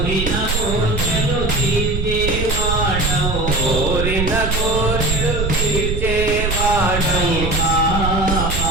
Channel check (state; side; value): noise; right; rumble, 2 dB below the sound